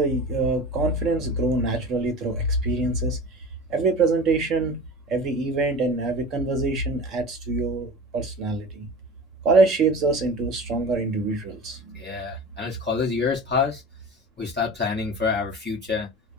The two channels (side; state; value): both; normal; correlation 0.35